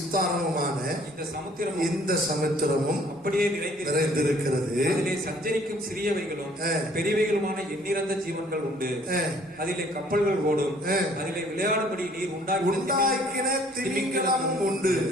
இந்த சமுத்திரமும் அப்படியே நிறைந்திருக்கிறது. அதிலே சஞ்சரிக்கும் சிறியவைகளும் பெரியவைகளுமான எண்ணிறந்த ஜீவன்கள் உண்டு. அதிலே கப்பல்கள் ஓடும். அதிலே விளையாடும்படி நீர் உண்டாக்கின திமிங்கலமும் உண்டு.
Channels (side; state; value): both; normal; correlation 0.58